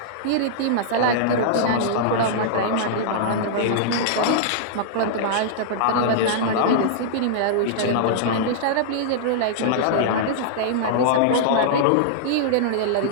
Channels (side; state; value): both; different; correlation -0.02